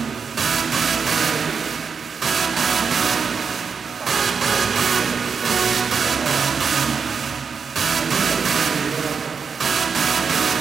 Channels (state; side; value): quieter; left; 5.8 dB